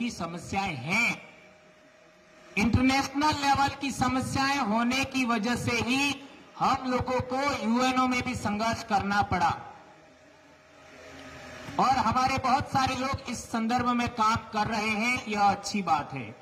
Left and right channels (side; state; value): both; identical; correlation 1.00